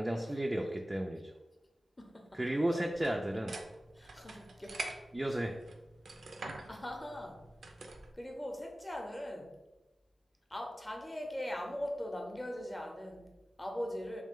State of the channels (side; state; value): both; normal; correlation 0.96